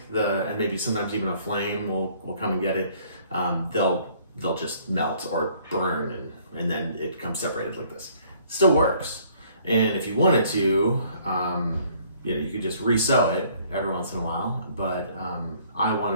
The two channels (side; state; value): both; inverted; correlation -0.60